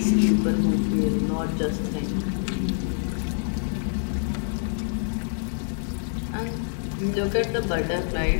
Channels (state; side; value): silent; right; digital silence